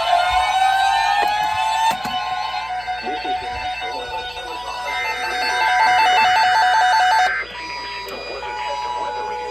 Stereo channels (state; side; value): noise; left; hum, 24 dB below the sound